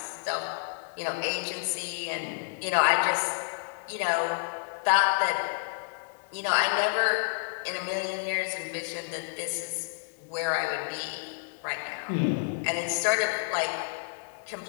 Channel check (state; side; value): silent; right; 58 dB below the other